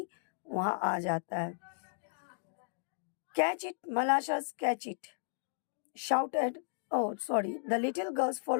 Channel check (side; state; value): right; silent; digital silence